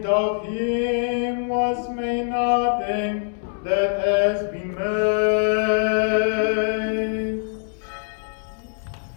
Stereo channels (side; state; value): right; silent; digital silence